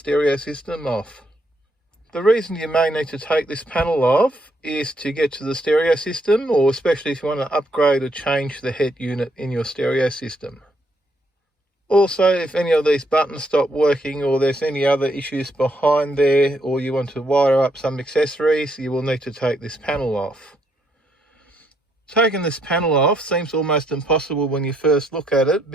system off. The reason you may need to take this panel off is to get to the stereo system, or especially if you want to upgrade or change the head unit in your stereo system. Also, if any of these buttons stop working or there's any other issues behind there, or you want to wire up some accessories, you will need to take this panel off. Taking this panel off seems almost impossible when you first look at it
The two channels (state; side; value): normal; both; correlation 0.74